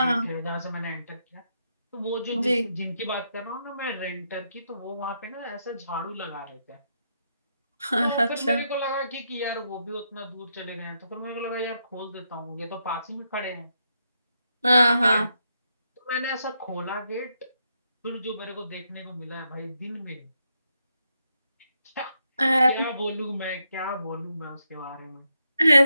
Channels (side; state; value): both; inverted; correlation -0.80